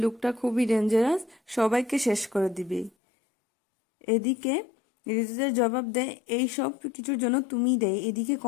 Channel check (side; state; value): right; drops out; at 2.9 s